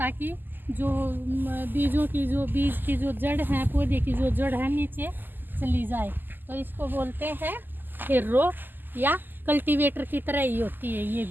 जो बीज की जो जड़ है, पौधे की जो जड़ है नीचे चली जाए, तो इसको बोलते हैं हिर्रो या कल्टीवेटर की तरह ही होती है।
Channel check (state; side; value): late; left; 0.090 ms